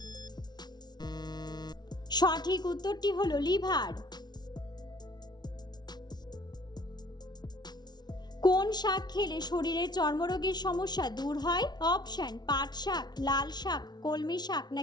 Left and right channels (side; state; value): right; late; 0.20 ms